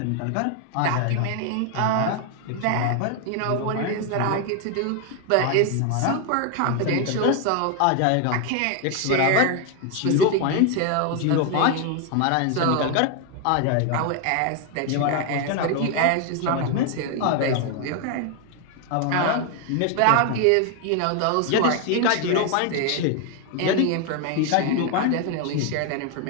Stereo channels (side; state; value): both; different; correlation 0.01